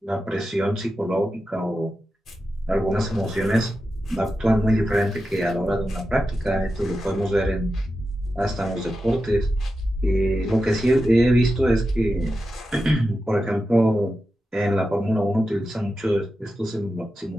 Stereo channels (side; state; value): both; normal; correlation 0.90